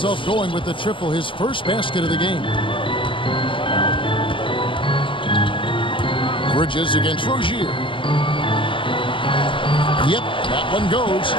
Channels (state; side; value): late; right; 0.25 ms